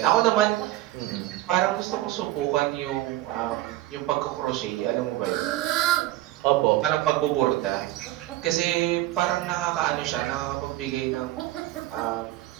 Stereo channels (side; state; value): left; quieter; 16.0 dB